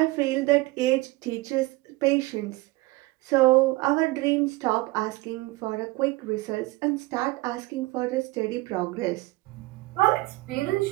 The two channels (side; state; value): left; quieter; 21.4 dB